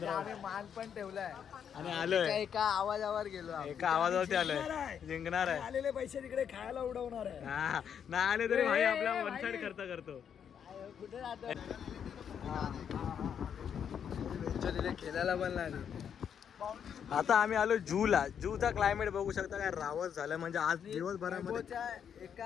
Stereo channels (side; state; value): right; quieter; 8.1 dB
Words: आम्ही मान पण ठेवलाय आणि आलोय. एका आवाजावर गेलो, एका आवाजावरती आलोय. जिंकणार आहे. आलेले पैसे तिकडे खायला उडवणार आहे. हा नाही आले तरी भाई आपला वन साइड खर्च करतो. कुठे राहतो खेळायला पण लागले. आता आम्ही आलो जूला. जूचा क्लायमेट बघू शकता काय रावत झालं. म्हणजे आज दिवसभरामध्ये